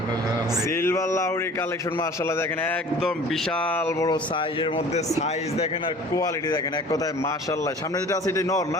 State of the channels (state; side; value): normal; both; correlation 0.45